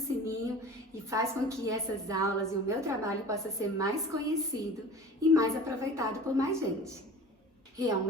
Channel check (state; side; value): normal; both; correlation 0.39